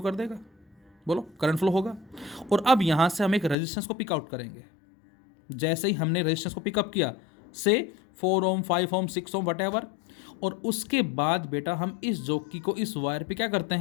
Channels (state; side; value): drops out; right; at 3.6 s